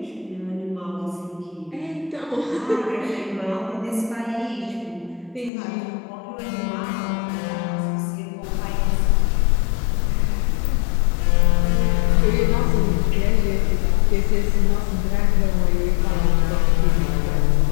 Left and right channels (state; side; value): drops out; right; at 5.5 s